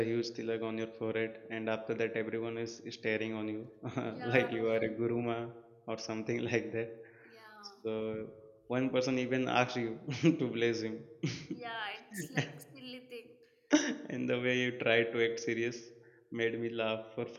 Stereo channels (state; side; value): identical; both; correlation 1.00